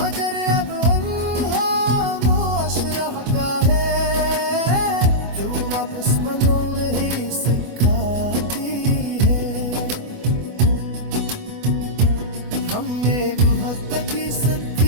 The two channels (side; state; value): left; late; 25 ms